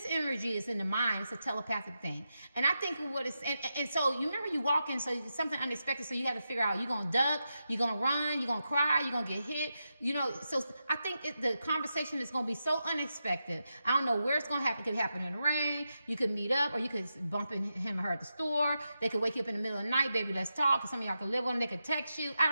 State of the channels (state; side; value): inverted; both; correlation -0.88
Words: imagery is in the mind. It's a telepathic thing. And I think what it's, and so you remember you walk in, so it's something unexpected, so you got to figure out, you're going to duck, you're going to run, you're going to cry, you're going to get hit. You know, so I think the conversation is going to be so unexpected. I don't know where it's going to happen. It could happen in the rain. You could meet up, or you could bump into him or her at the store. They could wake you up in the middle of the night, baby, let's talk. Or some of y'all could live on them. They could text you.